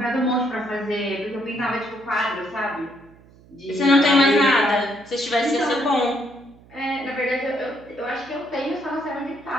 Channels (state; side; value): noise; right; hum, 25 dB below the sound